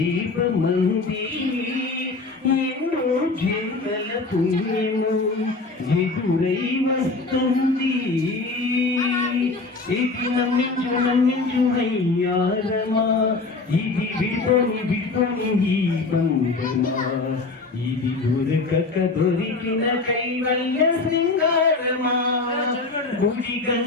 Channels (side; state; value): right; quieter; 3.7 dB